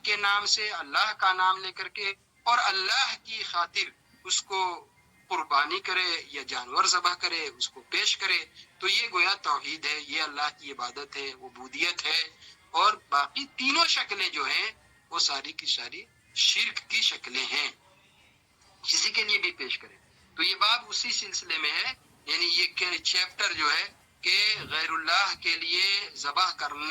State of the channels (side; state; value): both; identical; correlation 1.00